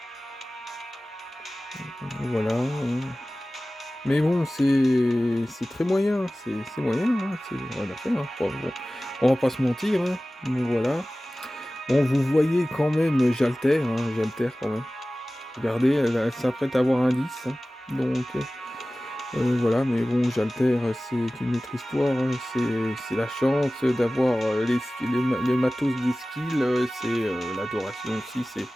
Voilà. Mais bon, c'est très moyen, c'est moyen, hein, c'est rien à faire, hein. Bon, on va pas se mentir, hein, mais voilà. Bon, vous voyez quand même, j'altère, hein, j'altère quand même. Regardez, elle s'apprête à avoir un 10, hein, donc voilà, mais bon, j'altère, c'est une autre histoire, hein, c'est la chance d'avoir les matos des skills, c'est l'adoration aussi,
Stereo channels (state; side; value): normal; both; correlation 0.97